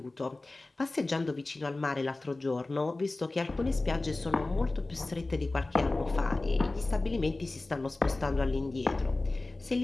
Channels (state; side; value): quieter; right; 3.0 dB